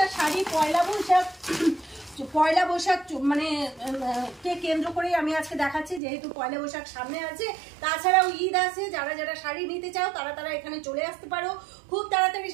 শাড়ি পয়লা বৈশাখ মানে কে কেন্দ্র করেই আমি আজকে দেখাচ্ছি, যেহেতু পয়লা বৈশাখ সামনে আছে। তাছাড়াও ঈদ আছে, যারা শাড়ি নিতে চাও তারা এখানে চলে আসতে পারো। খুব তাড়াতাড়ি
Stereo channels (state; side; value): drops out; left; at 6.0 s